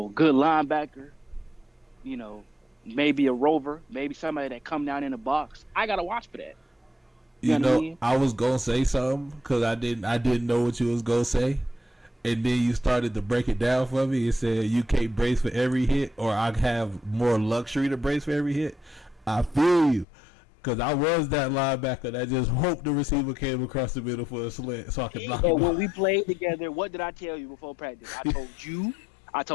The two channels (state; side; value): drops out; right; at 20.1 s